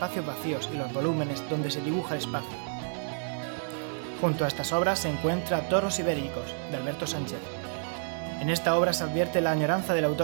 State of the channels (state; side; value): silent; left; digital silence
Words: vacíos y los volúmenes donde se dibuja el espacio. Junto a estas obras se encuentra Toros Ibéricos, de Alberto Sánchez. En esta obra se advierte la añoranza del